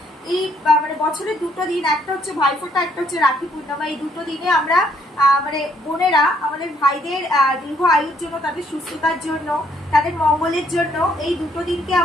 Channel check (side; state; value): both; normal; correlation 0.69